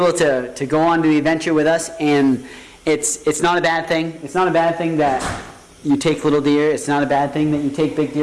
go on to the adventure with us, and it's not a bad thing. It's not a bad thing that you take little deer. It's not a bad thing that you take big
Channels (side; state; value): both; identical; correlation 1.00